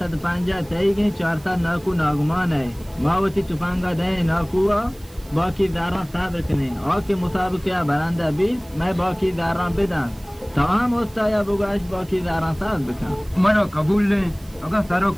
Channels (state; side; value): noise; right; hiss, 26 dB below the sound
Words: पांजा तई गई 4 नाकू नागमान है मावती तुपांगा दे नाकुआ बाकी दारा साब रखने और के मुसाबका बरांदा भी मैं बाकी दारा बिदा तमाम होता या बुगाश बाकी दारा साब बिका मनो कबूल ले अगर सारो